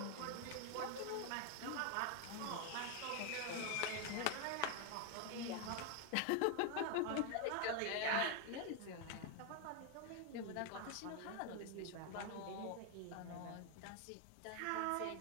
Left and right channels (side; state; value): both; different; correlation 0.01